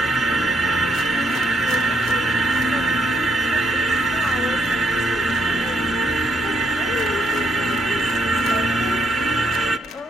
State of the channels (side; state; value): both; normal; correlation 0.74